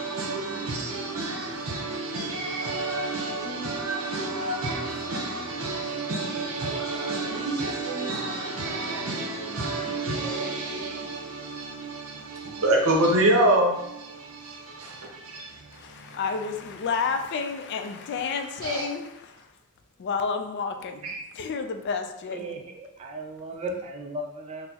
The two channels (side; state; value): both; normal; correlation -0.01